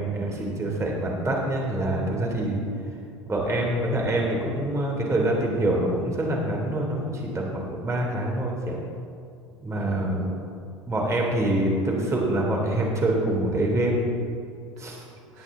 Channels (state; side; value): normal; both; correlation 0.51